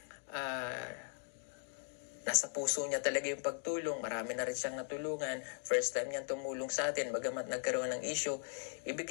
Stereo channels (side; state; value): right; silent; digital silence